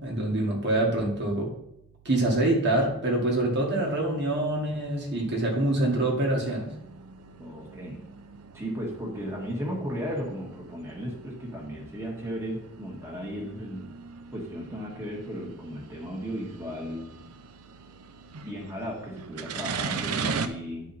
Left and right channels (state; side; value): noise; right; hum, 27 dB below the sound